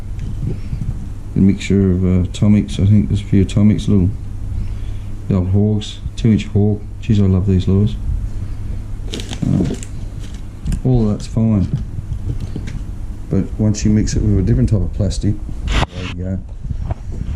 A mixture of atomics. I think there's a few atomics, little the old hogs, 2-inch hog. Geez, I love these lures. All of that's fine, but once you mix it with a different type of plastic, there you go.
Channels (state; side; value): identical; both; correlation 1.00